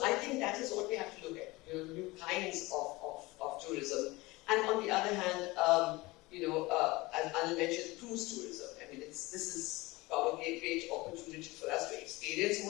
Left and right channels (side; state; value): right; quieter; 21.7 dB